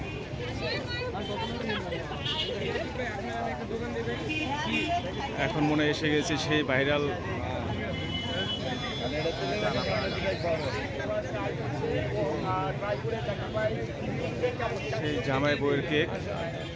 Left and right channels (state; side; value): identical; both; correlation 1.00